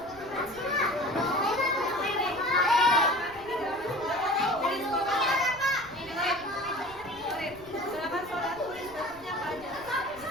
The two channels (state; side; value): noise; right; rumble, 21 dB below the sound